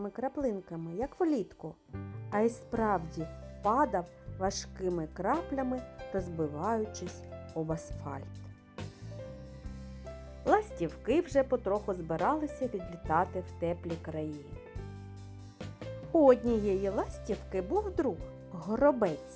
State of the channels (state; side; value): identical; both; correlation 1.00